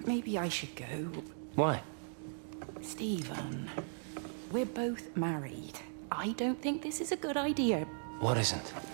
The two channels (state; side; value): silent; left; digital silence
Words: maybe I should go. Why? Stephen, we're both married. I don't think this is a good idea. What isn't?